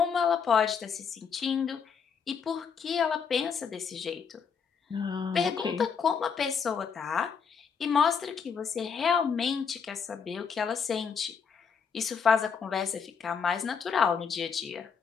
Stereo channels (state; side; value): quieter; right; 6.3 dB